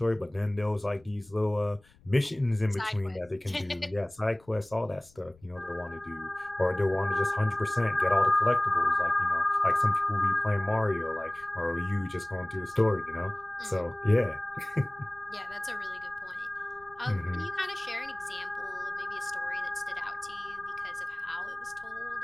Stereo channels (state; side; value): noise; left; rumble, 28 dB below the sound